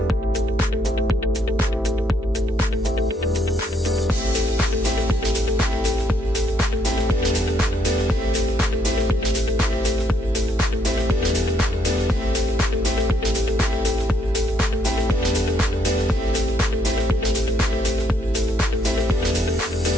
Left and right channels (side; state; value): both; normal; correlation 0.73